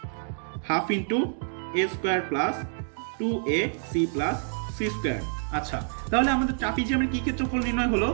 half into A square plus 2ac plus C square. আচ্ছা, তাহলে আমাদের ট্রাপিজিয়ামের কি ক্ষেত্রফল নির্ণয় হলো?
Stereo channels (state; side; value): silent; left; digital silence